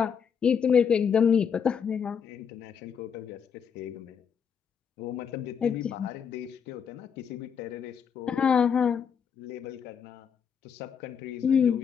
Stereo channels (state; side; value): quieter; right; 7.1 dB